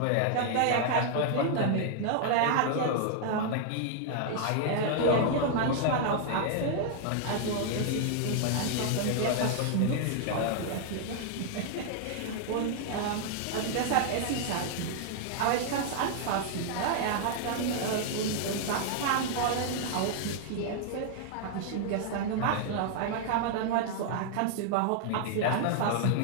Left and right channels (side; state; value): both; different; correlation 0.00